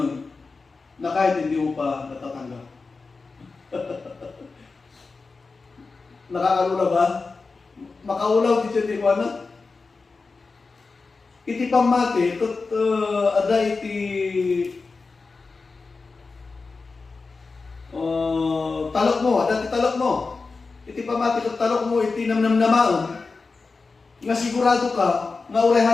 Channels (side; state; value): right; quieter; 4.2 dB